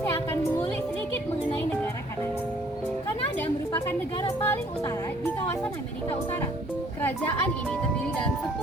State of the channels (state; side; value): normal; both; correlation 0.59